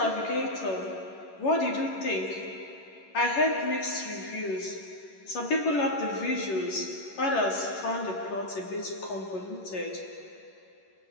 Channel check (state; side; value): late; right; 11 ms